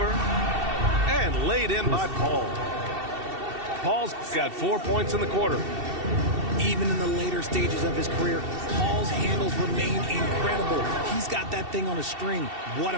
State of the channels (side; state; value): left; late; 2.7 ms